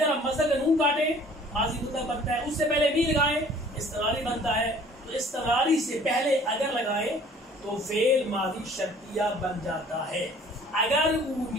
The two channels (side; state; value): both; normal; correlation 0.52